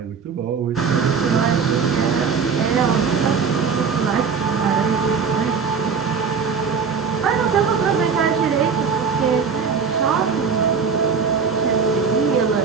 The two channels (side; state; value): left; quieter; 5.8 dB